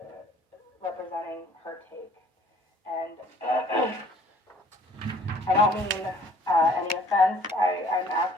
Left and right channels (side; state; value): both; normal; correlation 0.56